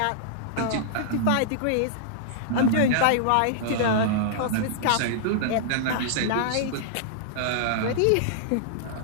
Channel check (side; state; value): both; different; correlation -0.02